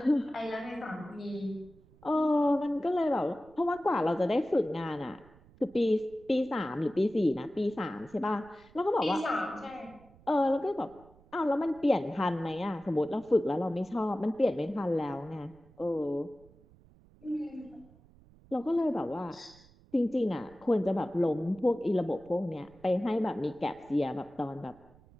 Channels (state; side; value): noise; right; rumble, 26 dB below the sound